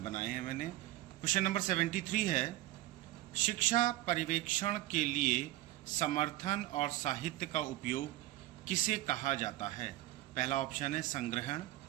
हैं मैंने। क्वेश्चन नंबर 73 है, शिक्षा पर्यवेक्षण के लिए समर्थन और साहित्य का उपयोग किसे कहा जाता है? पहला ऑप्शन है संग्रहण,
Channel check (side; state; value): left; quieter; 16.6 dB